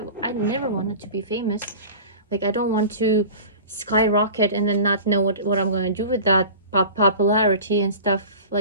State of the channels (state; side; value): inverted; both; correlation -0.36